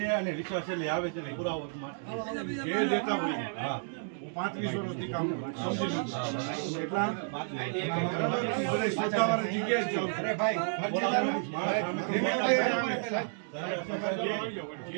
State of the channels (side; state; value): left; silent; digital silence